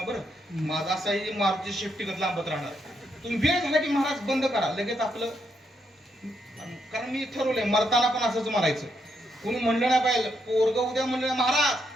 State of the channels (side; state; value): both; normal; correlation 0.78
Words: बरं, माझा असाही मारुती शेपटीगत लांबत राहणार. तुम्ही वेळ झाला की महाराज बंद करा लगेच आपलं. कारण मी ठरवलंय मरताना पण असंच मारायचं. कोणी म्हणलं नाही पाहिजे, पोरग उद्या म्हणलं